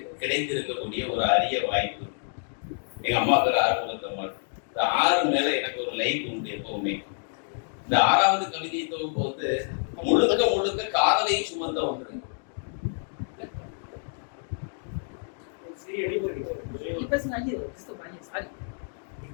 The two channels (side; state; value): right; silent; digital silence